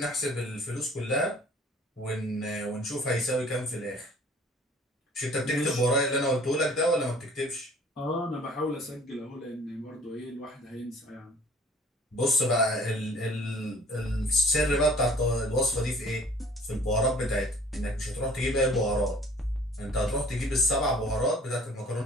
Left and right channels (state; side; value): normal; both; correlation 0.52